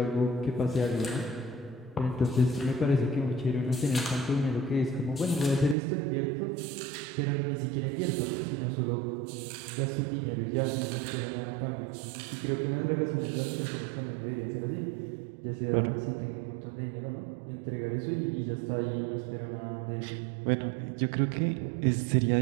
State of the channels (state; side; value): drops out; left; at 5.8 s